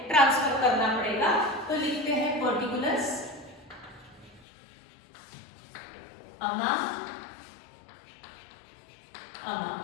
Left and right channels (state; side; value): drops out; right; at 4.5 s